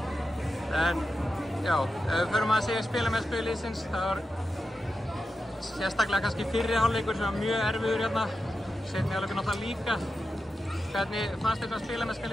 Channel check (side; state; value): both; normal; correlation 0.90